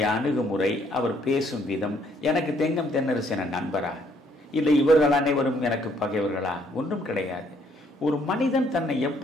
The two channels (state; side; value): normal; both; correlation 0.67